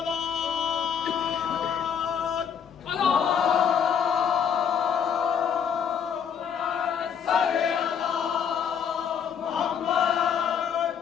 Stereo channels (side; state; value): right; quieter; 7.6 dB